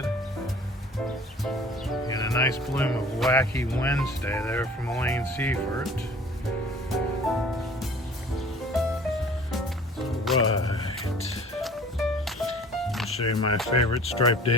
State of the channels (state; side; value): normal; both; correlation 0.47